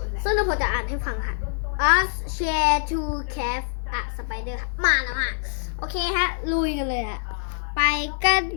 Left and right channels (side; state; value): right; silent; 62 dB below the other